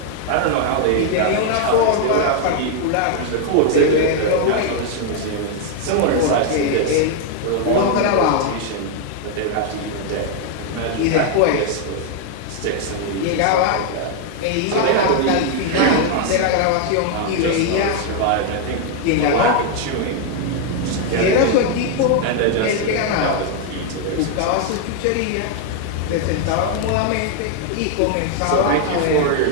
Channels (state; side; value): different; both; correlation 0.00